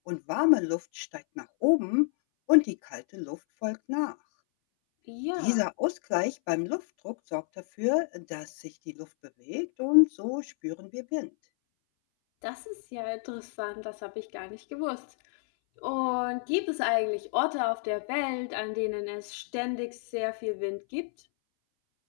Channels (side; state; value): right; silent; 58 dB below the other